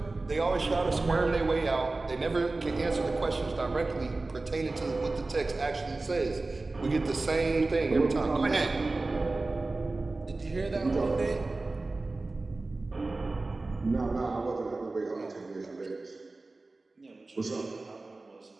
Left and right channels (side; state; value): left; quieter; 3.3 dB